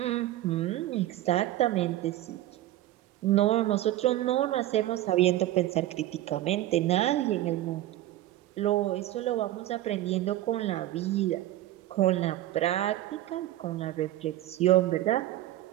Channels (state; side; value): quieter; left; 14.5 dB